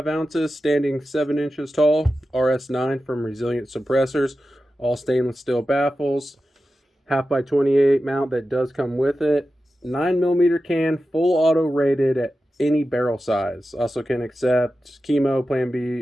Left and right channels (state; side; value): normal; both; correlation 0.93